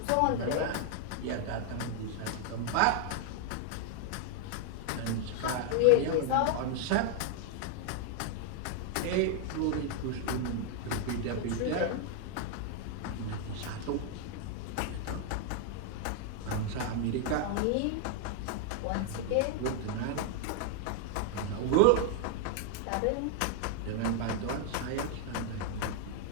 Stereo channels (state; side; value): different; both; correlation 0.00